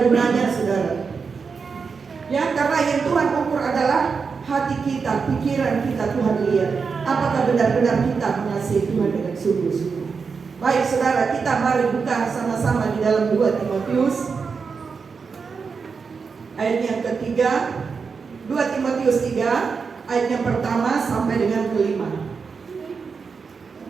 gunanya, saudara. Ya, karena yang Tuhan ukur adalah hati kita, pikiran kita. Tuhan lihat apakah benar-benar kita mengasihi Tuhan dengan sungguh-sungguh. Baik saudara, kita mari buka sama-sama di dalam 2 Timotius ayat yang ketiga. 2 Timotius 3 ayat yang pertama sampai dengan kelima.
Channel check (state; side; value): quieter; left; 5.3 dB